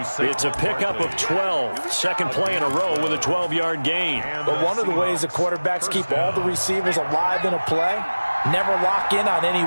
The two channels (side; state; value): both; inverted; correlation -1.00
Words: It's a pickup of 12. Second play in a row with a 12-yard gain. But one of the ways the quarterbacks keep all the receivers alive in a play Never lock in on any